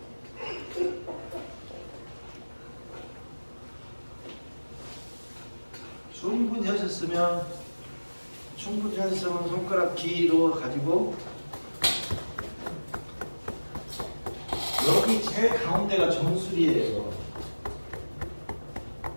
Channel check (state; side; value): inverted; both; correlation -1.00